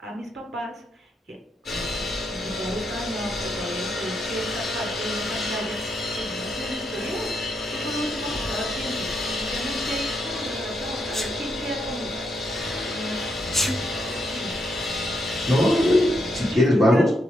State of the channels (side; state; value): both; normal; correlation 0.80